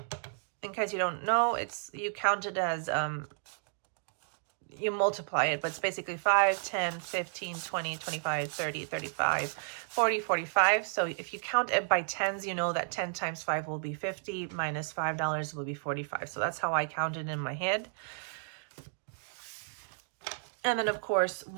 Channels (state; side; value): silent; left; digital silence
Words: In case you don't know, you count it as you multiply it, but it's basically 5, 10, 15, 20, 25, 30, 35, 40, 45. So if you count it by tens, you know that 10 times 5 will be 50, minus $5 will be 45. So that's how I counted in my head. And then, of course,